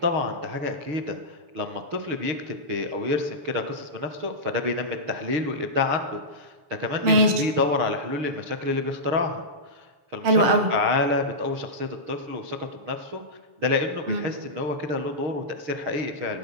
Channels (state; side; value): late; left; 6.9 ms